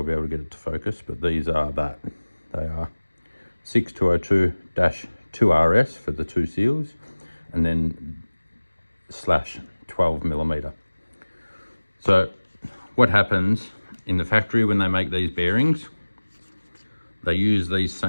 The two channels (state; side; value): inverted; both; correlation -1.00